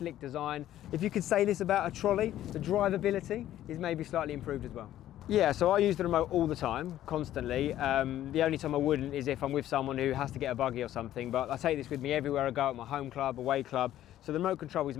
design. If you could say this about a trolley, the drivability is maybe slightly improved as well. Yeah, so I use the remote all the time, constantly. The only time I wouldn't is if I'm with someone who has to get a buggy or something, but I take this with me everywhere I go, at my home club, away club. So the remote control is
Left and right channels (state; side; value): quieter; right; 12.7 dB